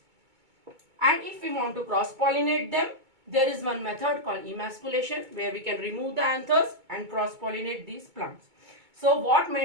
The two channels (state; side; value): late; left; 2.2 ms